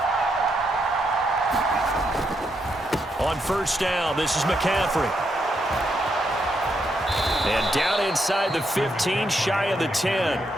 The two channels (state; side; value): normal; both; correlation 0.79